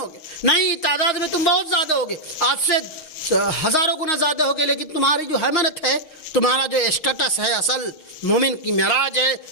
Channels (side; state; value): right; late; 6.4 ms